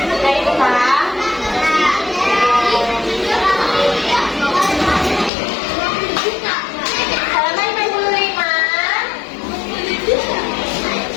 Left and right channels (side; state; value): right; drops out; at 5.3 s